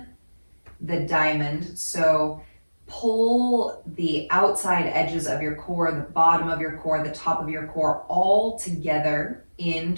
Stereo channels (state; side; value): inverted; both; correlation -1.00